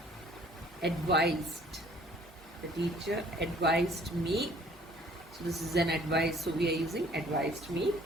advised. The teacher advised me. So this is an advice. So we are using advised me.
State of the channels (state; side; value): normal; both; correlation 0.56